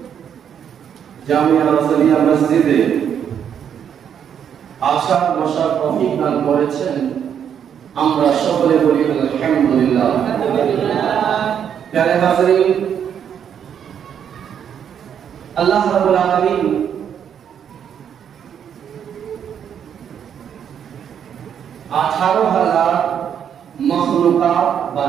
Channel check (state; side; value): quieter; left; 8.5 dB